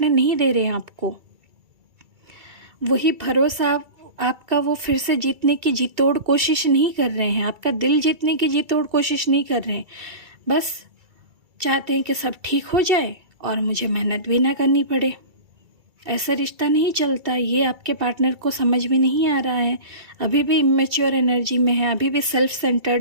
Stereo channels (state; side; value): late; left; 2.3 ms